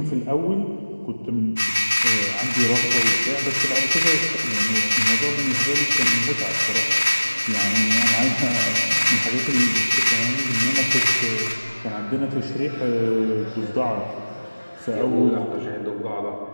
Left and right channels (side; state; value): both; inverted; correlation -1.00